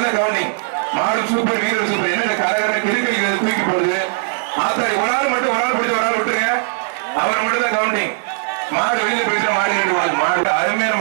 தான் கவுண்டிங் மாடு சூப்பர் வீரர் சூப்பர் என்ன கரகர கிருக்கை தூக்கி போடுது ஆத்தாடி ஒரு ஆள் மட்டும் ஒரு ஆள் பிடிச்ச ஒரு ஆள் விட்டுங்க அவர் மட்டும் தான் கவுண்டிங் மாடு வெளியில போயிட்டு மாடு ரெண்டு மாடு அருமையான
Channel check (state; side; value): silent; left; 67 dB below the other